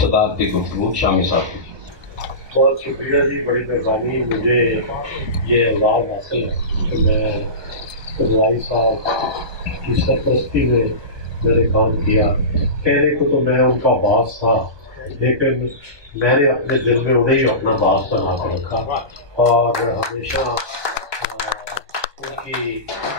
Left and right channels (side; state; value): left; late; 1.2 ms